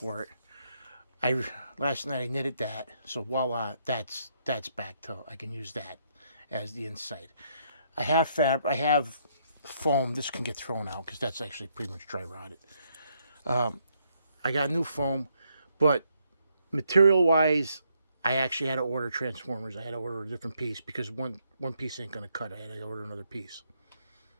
it. Last night I knitted that. So voila, that's back to, I can use that as the inside. I have foam. This can get thrown out because that's actually pretty much dry rotted. I got new foam, but material wise, I actually had to order transformers. I had to order a different piece because one piece ain't gonna cut. I had to order another piece.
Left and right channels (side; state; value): both; inverted; correlation -0.74